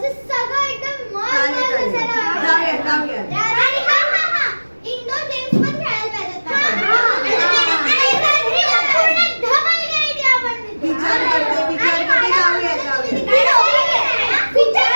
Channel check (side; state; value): both; inverted; correlation -1.00